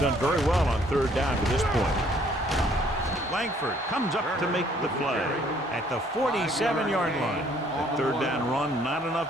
very well on 3rd down to this point. Langford comes up to make the play at the 47-yard line. The 3rd down run not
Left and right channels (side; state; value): both; normal; correlation 0.62